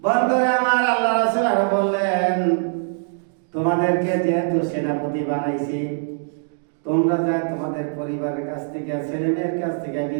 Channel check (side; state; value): left; silent; 64 dB below the other